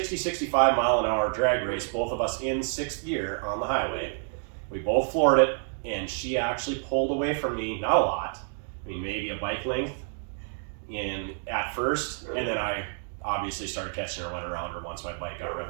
mile an hour drag race, both of us in 6th gear on the highway. We both floored it, and she actually pulled away from me, not a lot. I mean, maybe a bike length at first, and then I obviously started catching her, went around her once my bike got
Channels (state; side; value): silent; left; 59 dB below the other